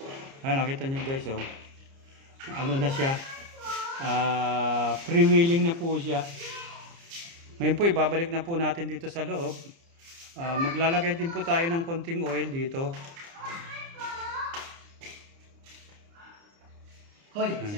Nakita nyo guys, ano na siya, freewheeling na po siya. Ngayon po, ibabalik na po natin dito sa loob. Maglalagay din po tayo ng konting oil dito. Hoy,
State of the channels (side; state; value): left; late; 30 ms